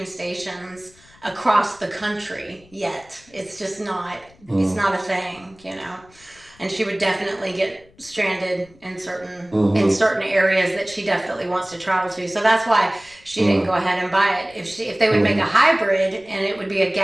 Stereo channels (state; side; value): noise; left; rumble, 28 dB below the sound